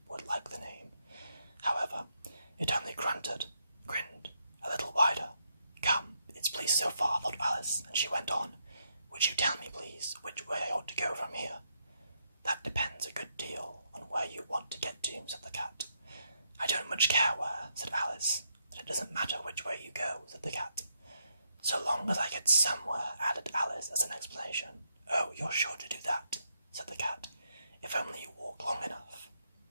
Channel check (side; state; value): both; inverted; correlation -0.79